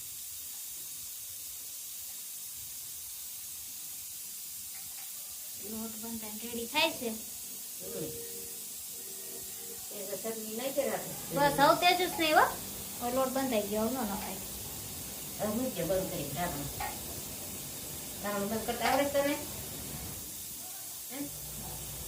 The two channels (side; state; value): both; identical; correlation 1.00